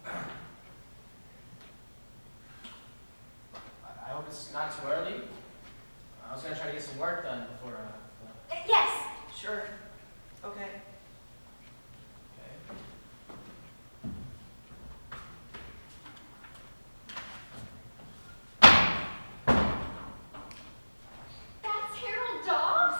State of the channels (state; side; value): inverted; both; correlation -1.00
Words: I hope it's not too early. I was gonna try to get some work done before. Yes. Sure. Okay. Okay. That's Harold